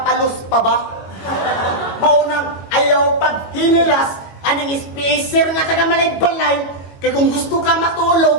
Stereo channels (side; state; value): right; late; 22 ms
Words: pa ba? Maunang ayaw pag hinilas, anong spacer nga taga malay-balay, kaya kung gusto ka